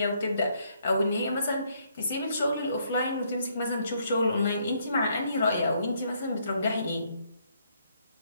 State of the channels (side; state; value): both; inverted; correlation -0.70